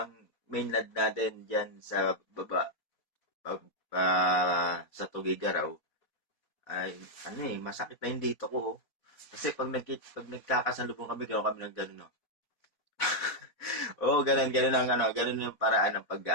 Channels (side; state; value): right; late; 4.1 ms